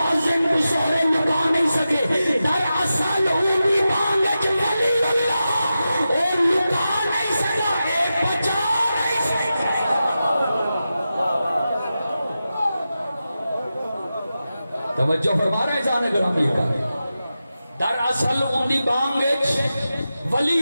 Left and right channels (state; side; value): inverted; both; correlation -0.92